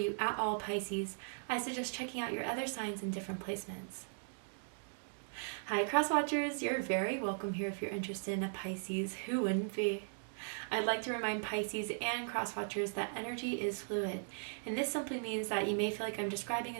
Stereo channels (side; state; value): left; silent; digital silence